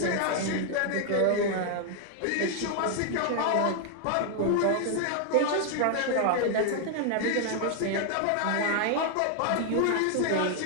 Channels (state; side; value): different; both; correlation 0.00